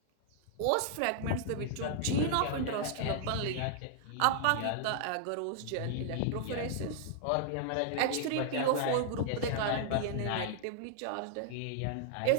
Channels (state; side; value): different; both; correlation -0.01